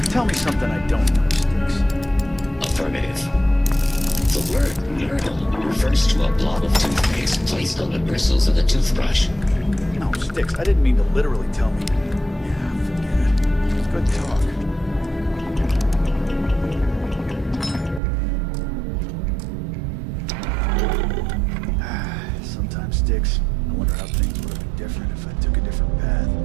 Tell me something I don't know, Sticks. Affirmative. The word myrtle refers to a blob of toothpaste placed on the bristles of a toothbrush. No, Sticks, I didn't mean to literally tell me. Yeah, forget it. It's good talk. Sometimes, Sticks, I wonder how things would have been different if I took a different path.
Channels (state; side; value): drops out; left; at 18.0 s